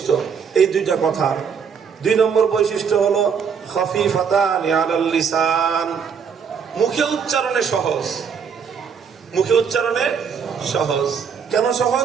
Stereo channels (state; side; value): quieter; left; 6.7 dB